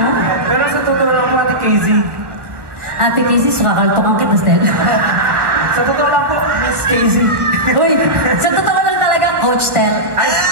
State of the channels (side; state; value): left; late; 1.3 ms